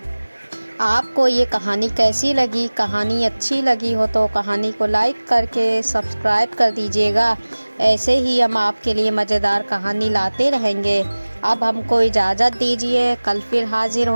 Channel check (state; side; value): inverted; both; correlation -1.00